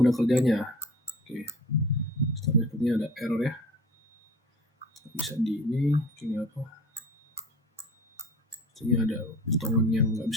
kerjanya. Oke. Sepertinya ada error ya. Bisa di ini kayak apa? Ini ada potongan yang nggak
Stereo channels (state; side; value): normal; both; correlation 0.43